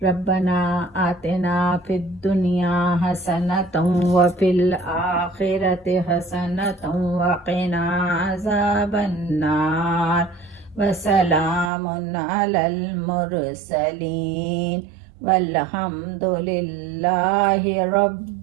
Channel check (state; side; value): drops out; left; at 11.7 s